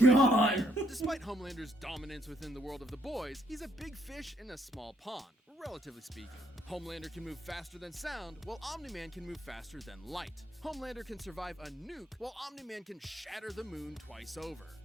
god. there. Despite Homelander's dominance within the world of the boys, he's a big fish in a small pond, relatively speaking. Homelander can move faster than sound, while Omni-Man can move faster than light. Homelander can survive a nuke, while Omni-Man can shatter the moon twice over.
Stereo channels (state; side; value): normal; both; correlation 0.71